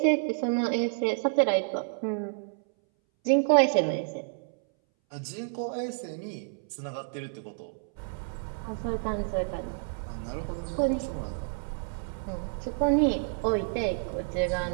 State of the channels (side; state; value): left; silent; 58 dB below the other